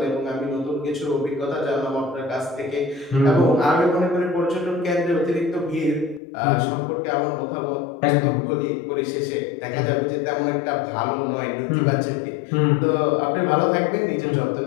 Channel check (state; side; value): drops out; right; at 6.2 s